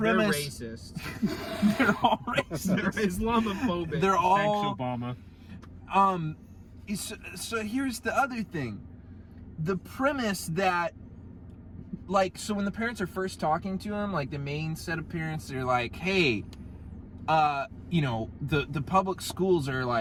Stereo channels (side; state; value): both; identical; correlation 1.00